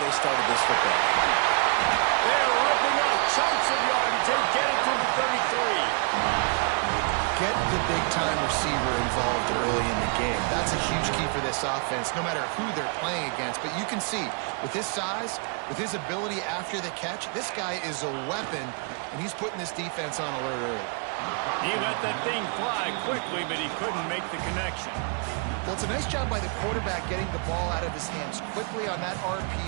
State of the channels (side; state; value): left; quieter; 39.4 dB